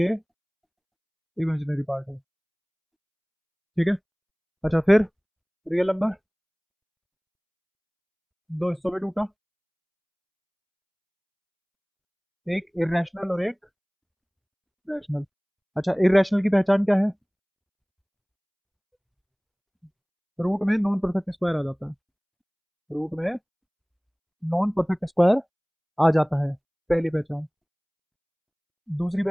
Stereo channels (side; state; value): both; identical; correlation 1.00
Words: इमेजिनरी पार्ट है। ठीक है। अच्छा फिर रियल नंबर दो हिस्सों में टूटा, एक इरेशनल और एक रैशनल। अच्छा इरेशनल की पहचान क्या है, रूट में नॉन परफेक्ट स्क्वायर आ जाता है, रूट में नॉन परफेक्ट स्क्वायर आ जाता है, पहली पहचान। दूसरी